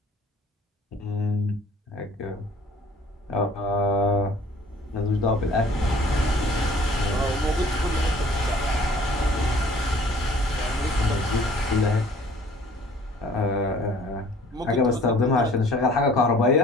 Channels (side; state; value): both; normal; correlation 0.53